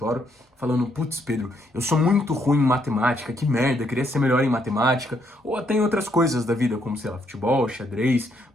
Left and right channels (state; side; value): normal; both; correlation 0.73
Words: falando, putz, Pedro, eu sou muito ruim em matemática, que merda, eu queria ser melhor em matemática, ou até em outras coisas da vida, como, sei lá, futebol, xadrez,